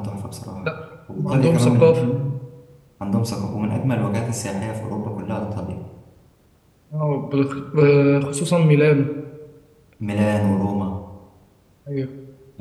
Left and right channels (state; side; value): identical; both; correlation 1.00